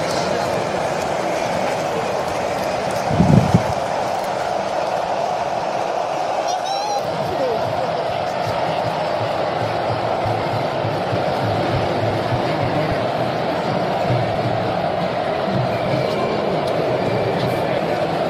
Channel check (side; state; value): both; identical; correlation 1.00